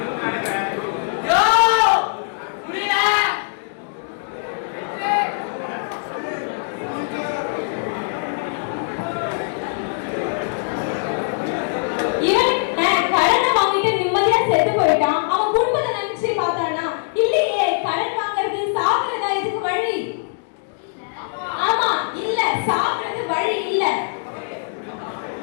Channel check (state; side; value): silent; right; digital silence